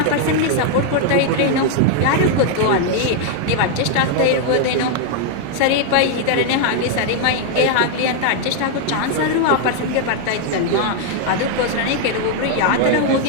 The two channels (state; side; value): different; both; correlation 0.00